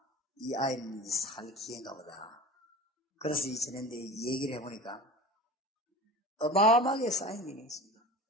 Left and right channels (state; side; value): normal; both; correlation 0.35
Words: 이 아이는 살 기회인가 보다. 그래서 이 지낸데 얘기를 해보니까 어마어마하게 쌓인 게 있습니다.